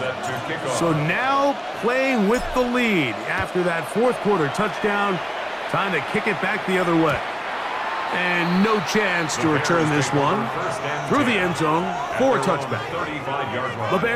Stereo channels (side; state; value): both; identical; correlation 1.00